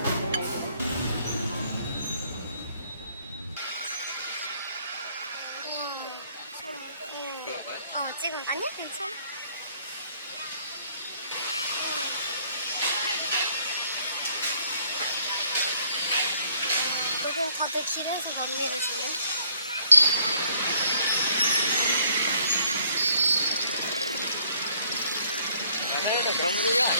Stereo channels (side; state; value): both; inverted; correlation -0.63